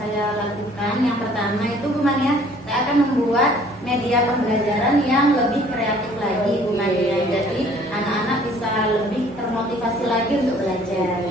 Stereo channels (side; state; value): both; normal; correlation 0.56